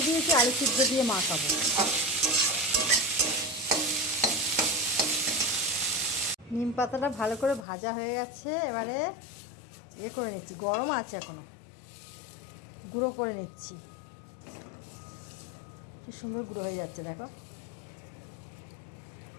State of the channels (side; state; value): right; drops out; at 7.7 s